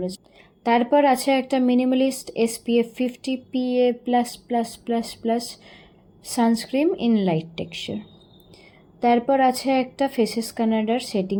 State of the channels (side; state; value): both; identical; correlation 1.00